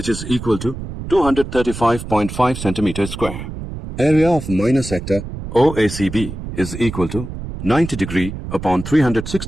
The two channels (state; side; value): noise; right; rumble, 9 dB below the sound